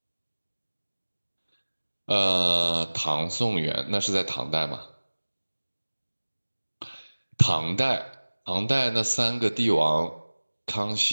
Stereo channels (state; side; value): inverted; both; correlation -1.00